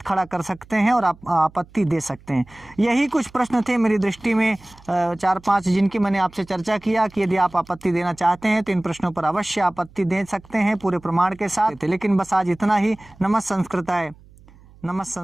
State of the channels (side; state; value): right; noise; hum, 25 dB below the sound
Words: खड़ा कर सकते हैं और आप आपत्ति दे सकते हैं। यही कुछ प्रश्न थे मेरी दृष्टि में 4-5 जिनकी मैंने आपसे चर्चा किया कि यदि आप आपत्ति देना चाहते हैं तो इन प्रश्नों पर अवश्य आपत्ति दे सकते हैं पूरे प्रमाण के साथ। लेकिन बस आज इतना ही। नमः संस्कृताय, नमः